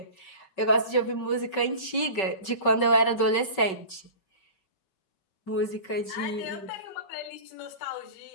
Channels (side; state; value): right; late; 5.3 ms